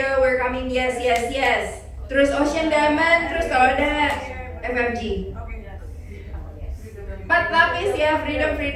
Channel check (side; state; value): both; identical; correlation 1.00